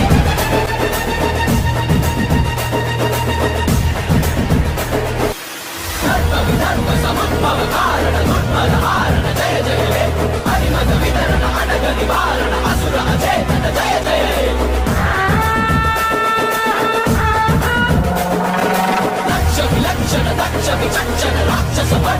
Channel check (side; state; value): both; identical; correlation 1.00